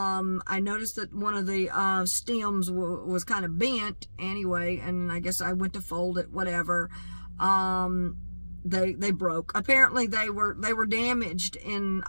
noticed that one of the stems was kind of bent anyway, and I guess I went to fold it, whatever. They broke. Apparently they were damaged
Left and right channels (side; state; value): both; inverted; correlation -1.00